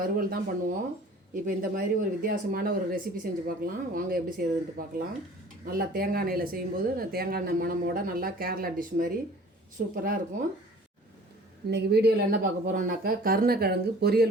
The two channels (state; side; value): normal; both; correlation 0.48